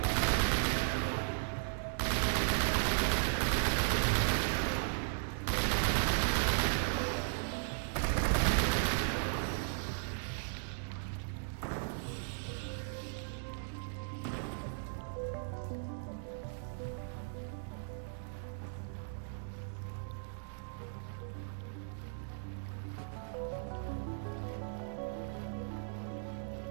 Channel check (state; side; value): silent; left; digital silence